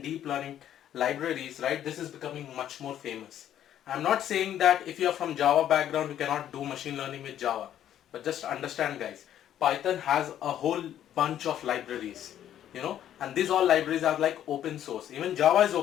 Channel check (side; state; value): right; quieter; 10.9 dB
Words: deep learning libraries, right, this is becoming much more famous. I'm not saying that if you are from Java background, you cannot do machine learning with Java, but just understand, guys, Python has a whole bunch of libraries, and these all libraries are like open source. Even Java is